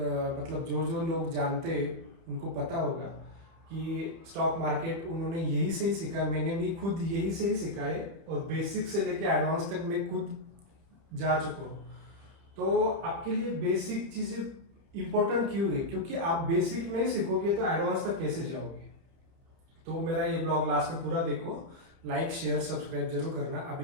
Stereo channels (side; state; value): left; late; 30 ms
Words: मतलब जो जो लोग जानते हैं उनको पता होगा कि स्टॉक मार्केट उन्होंने यही से ही सीखा है, मैंने भी खुद यही से ही सीखा है, और बेसिक से लेके एडवांस तक मैं खुद जा चुका हूँ। तो आपके लिए बेसिक चीज़ें इंपॉर्टेंट क्यों है, क्योंकि आप बेसिक नहीं सीखोगे तो एडवांस तक कैसे जाओगे। तो मेरा ये ब्लॉग लास्ट में पूरा देखो, लाइक शेयर सब्सक्राइब जरूर करना। अभी